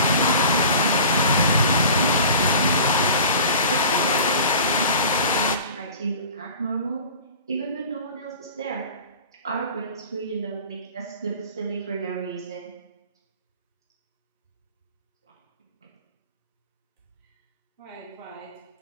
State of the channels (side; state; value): both; inverted; correlation -0.40